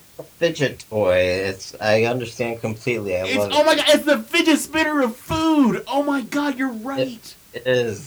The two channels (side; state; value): both; identical; correlation 1.00